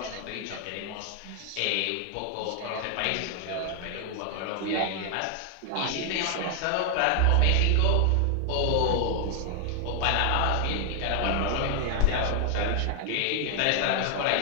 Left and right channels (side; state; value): both; different; correlation 0.00